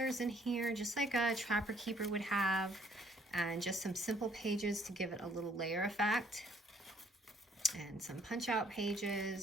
in here, just like a Trapper Keeper would have. And just some simple pages to give it a little layer effect. And some punch out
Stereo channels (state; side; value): normal; both; correlation 0.63